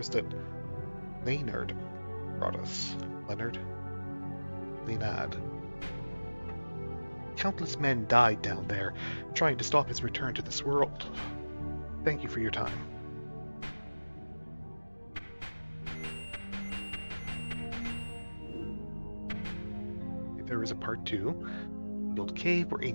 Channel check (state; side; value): inverted; both; correlation -1.00